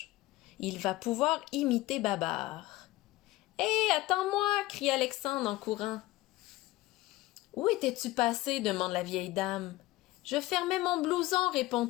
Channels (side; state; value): right; quieter; 18.2 dB